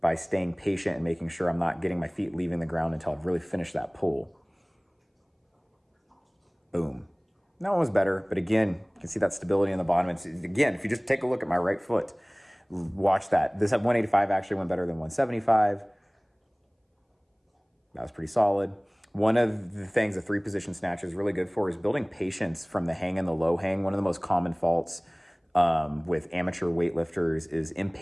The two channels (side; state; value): both; identical; correlation 1.00